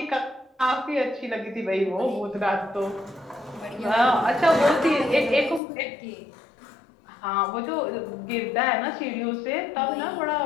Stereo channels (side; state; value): right; drops out; at 5.6 s